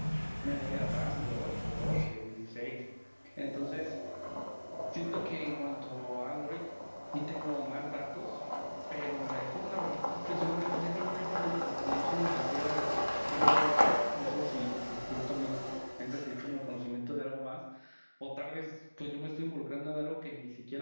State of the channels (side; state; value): both; inverted; correlation -1.00